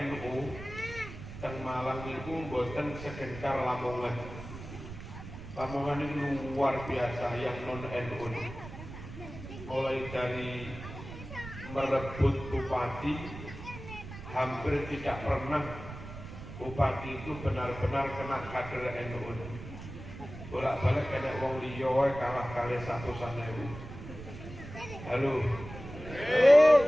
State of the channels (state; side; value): noise; right; rumble, 12 dB below the sound